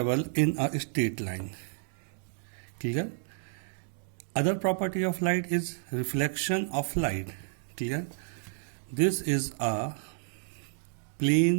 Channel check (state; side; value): silent; left; digital silence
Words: in a straight line. Clear? Other property of light is reflection of light. Clear? This is a